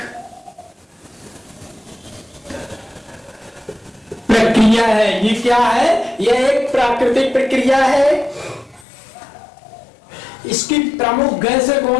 प्रक्रिया है। ये क्या है, यह एक प्राकृतिक प्रक्रिया है। इसकी प्रमुख गैसें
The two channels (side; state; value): right; drops out; at 8.8 s